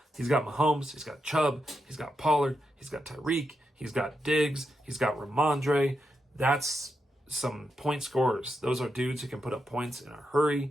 He's got Mahomes, he's got Chubb, he's got Pollard, he's got Tyreek, he's got Diggs, he's got Ramondre. That's some point scorers. Those are dudes who can put up points in a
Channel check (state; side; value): normal; both; correlation 0.85